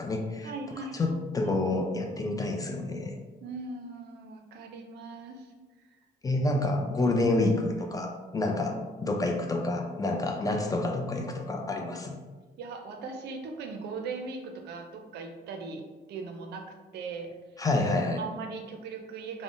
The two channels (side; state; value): both; normal; correlation 0.62